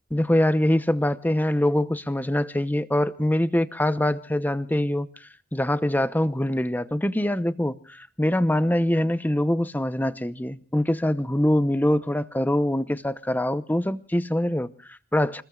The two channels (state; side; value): normal; both; correlation 0.95